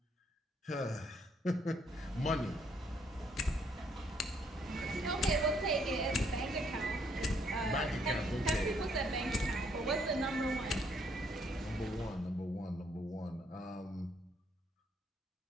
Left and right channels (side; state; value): both; normal; correlation 0.69